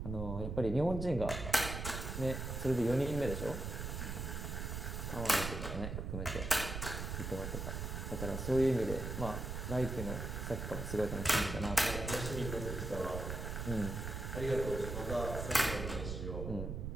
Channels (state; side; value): noise; right; rumble, 4 dB below the sound